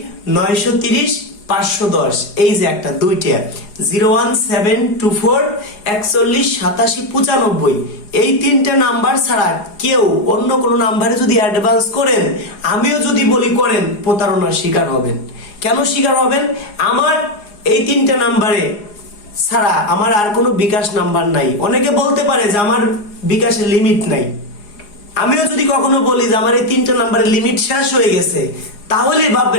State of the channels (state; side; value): late; right; 4.8 ms